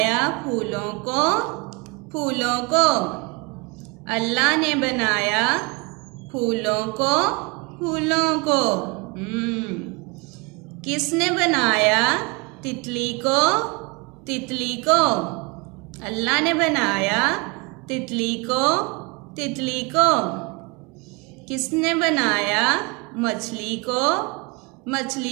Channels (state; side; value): quieter; left; 29.0 dB